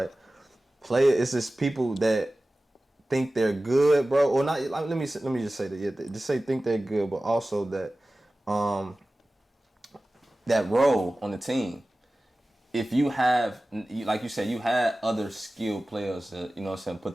It's just people that think they're good, bro, or not. Let me just say that. Yeah, just say think they're good, but also that that role on the team. If you have, like you said, you had other skilled players to, you know what I'm saying,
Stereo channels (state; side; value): normal; both; correlation 0.97